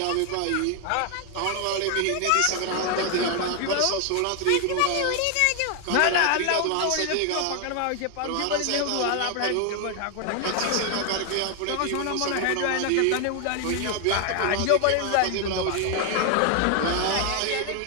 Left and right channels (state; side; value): different; both; correlation 0.01